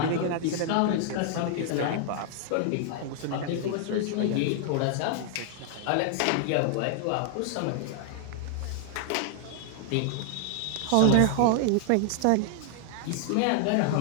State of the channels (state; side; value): different; both; correlation 0.00